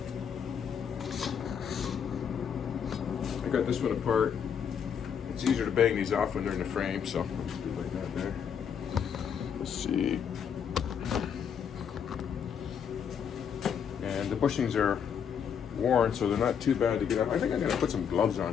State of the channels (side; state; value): right; quieter; 7.7 dB